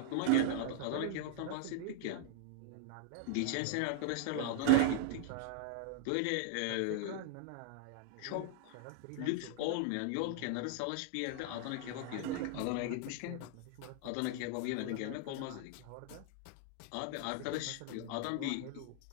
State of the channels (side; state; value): both; different; correlation -0.01